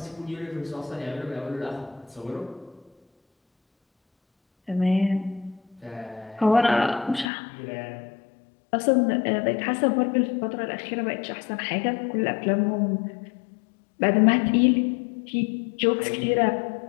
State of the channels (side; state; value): right; drops out; at 7.2 s